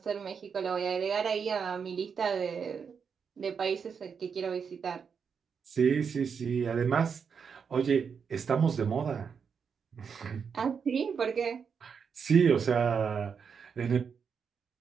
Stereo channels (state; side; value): quieter; left; 6.4 dB